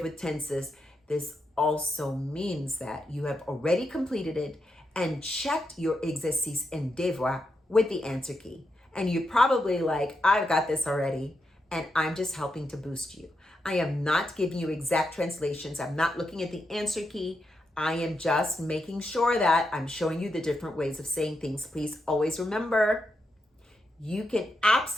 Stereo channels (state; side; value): normal; both; correlation 0.85